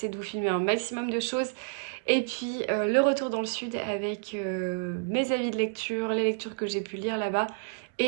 de vous filmer un maximum de choses. Et puis le retour dans le sud avec mes avis de lecture, les lectures que j'ai pu lire là-bas.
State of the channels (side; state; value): left; silent; digital silence